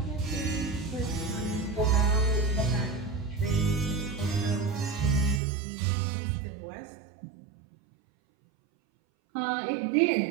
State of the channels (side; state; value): left; drops out; at 5.4 s